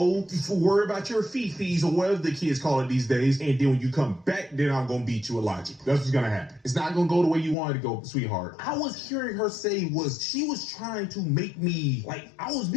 worry about your fees or whatever the kids call it these days. And then when you come back, then I'm going to beat you with logic. That's what's going to happen. It's not going to go the way you wanted to go, sweetheart. I was hearing her say she was trying to make me, like, I was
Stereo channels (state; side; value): drops out; right; at 7.6 s